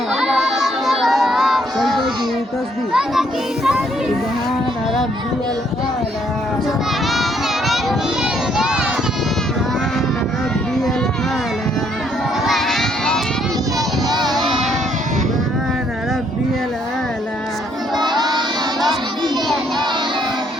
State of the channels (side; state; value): both; normal; correlation 0.69